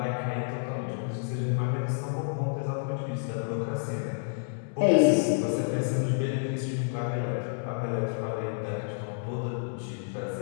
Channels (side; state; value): right; silent; digital silence